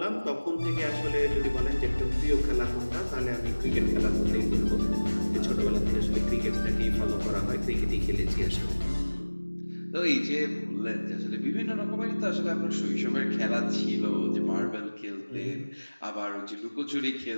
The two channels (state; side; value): inverted; both; correlation -1.00